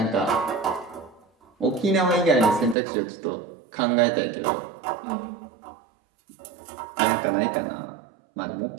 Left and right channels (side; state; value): left; drops out; at 2.8 s